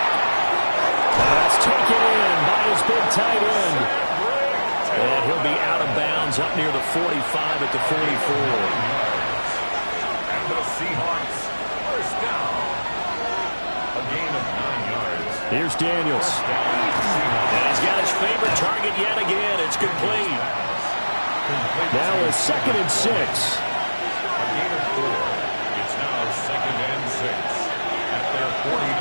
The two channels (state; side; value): inverted; both; correlation -1.00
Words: That's taken in by his big tight end. And he'll be out of bounds up near the 45 at the 44. And the Seahawks first down. A gain of 9 yards. Here's Daniels. And he's got his favorite target yet again. It's complete. Now a 2nd and 6. A gain of 4. It's now 2nd and 6.